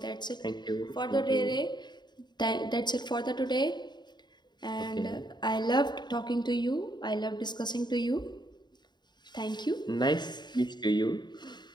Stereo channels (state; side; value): late; right; 0.21 ms